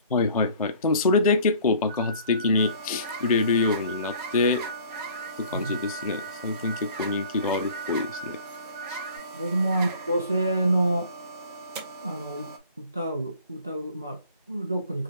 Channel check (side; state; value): both; inverted; correlation -0.50